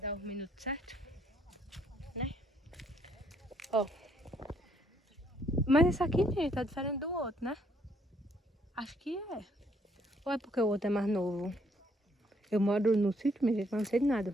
os minutos certos, né? Ó. Mas esse aqui, gente, tá diferente do outro, né? Acho que é. Ou é porque o outro é mais novo? Eu moro no sítio, minha gente, mas não sei de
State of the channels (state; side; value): normal; both; correlation 0.68